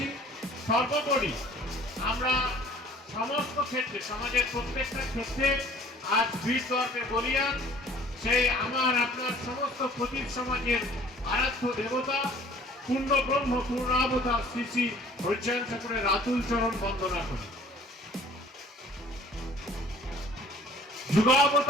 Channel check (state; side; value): normal; both; correlation 0.52